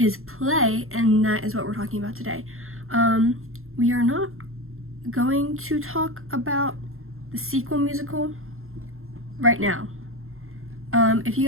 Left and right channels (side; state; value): left; late; 0.61 ms